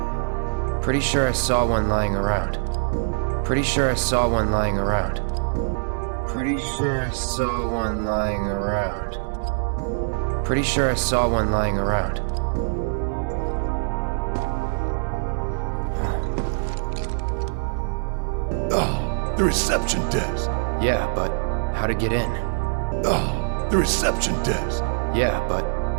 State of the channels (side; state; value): left; silent; digital silence